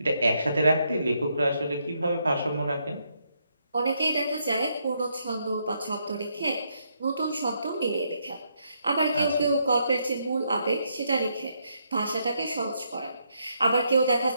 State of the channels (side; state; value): both; inverted; correlation -0.77